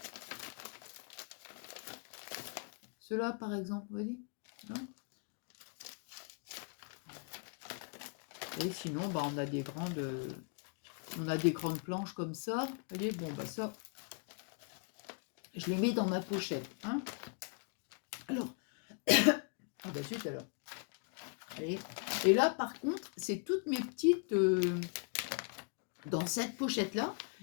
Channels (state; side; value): quieter; right; 40.0 dB